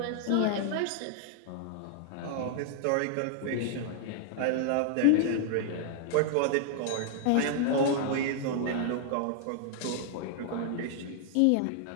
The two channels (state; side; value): different; both; correlation -0.01